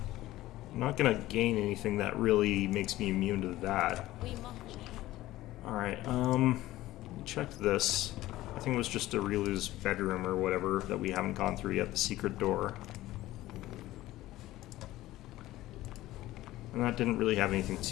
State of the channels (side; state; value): right; quieter; 16.2 dB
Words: I'm not gonna gain anything that really makes me immune to that. Alright, check this. I think it was just Arilu's bedroom or whatever that we haven't gone through yet, the secret door. And that didn't really have anything